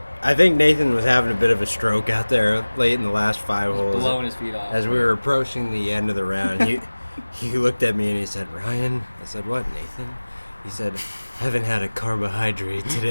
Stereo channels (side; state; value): both; inverted; correlation -1.00